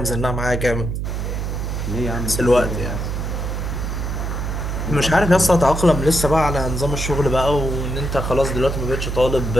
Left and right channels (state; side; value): noise; right; hum, 3 dB below the sound